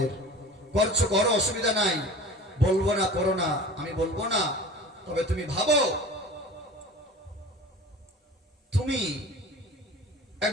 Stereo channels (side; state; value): both; normal; correlation 0.38